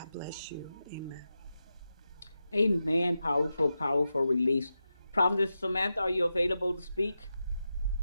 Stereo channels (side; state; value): both; inverted; correlation -0.90